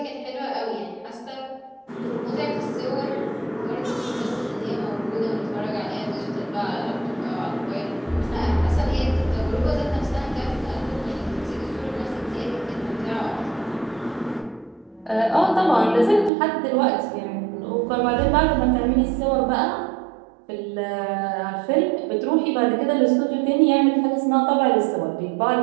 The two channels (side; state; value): left; drops out; at 16.3 s